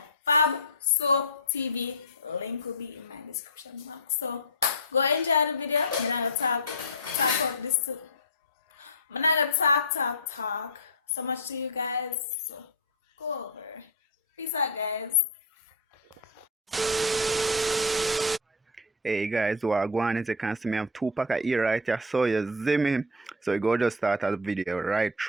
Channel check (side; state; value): both; normal; correlation 0.08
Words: Fab Soap TV. Link will be in my description box. So go enjoy the video. I'm not gonna talk about this too. I'm not gonna talk so much to you guys. So go over. Peace out, guys. Hey guys, what go on? As you can see, me have 2 pack of ear right here. So you see me. So you go just start the video right